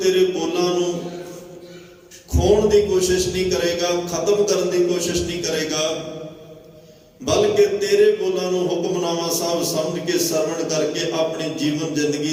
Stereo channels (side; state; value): both; identical; correlation 1.00